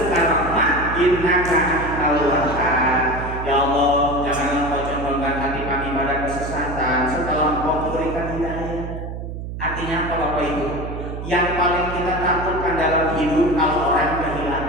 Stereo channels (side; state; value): right; noise; hum, 7 dB below the sound